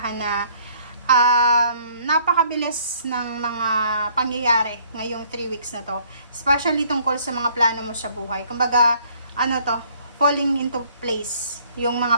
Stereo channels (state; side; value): inverted; both; correlation -0.61